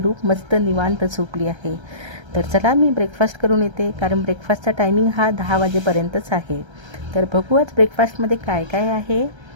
रूप मस्त निवांत झोपली आहे. तर चला मी ब्रेकफास्ट करून येते, कारण ब्रेकफास्टचा टायमिंग हा 10 वाजेपर्यंतच आहे. तर बघू आज ब्रेकफास्टमध्ये काय काय आहे.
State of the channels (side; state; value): left; late; 1.3 ms